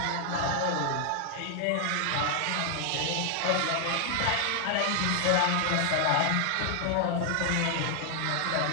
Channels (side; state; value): both; different; correlation 0.00